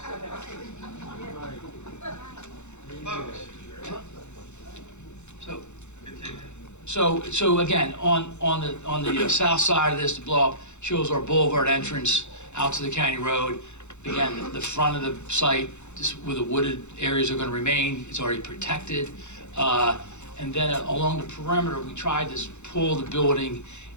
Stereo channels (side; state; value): right; late; 0.83 ms